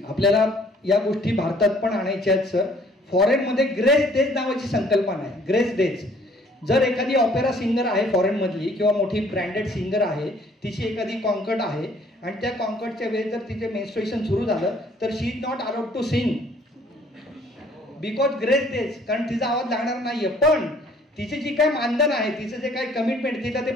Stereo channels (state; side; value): normal; both; correlation 0.58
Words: आपल्याला या गोष्टी भारतात पण आणायच्या आहेत सर. फॉरेनमध्ये ग्रेस डेज नावाची संकल्पना आहे. ग्रेस डेज, जर एखादी ऑपेरा सिंगर आहे फॉरेनमधली किंवा मोठी ब्रँडेड सिंगर आहे, तिची एखादी कॉन्कर्ट आहे आणि त्या कॉन्कर्टच्या वेळेस जर तिचे मेन्स्ट्रुएशन सुरू झालं तर she is not allowed to sing because grace days, कारण तिचा आवाज लागणार नाहीये. पण तिचे जी काय मानधन आहे, तिचं जे काय कमिटमेंट, तिला ते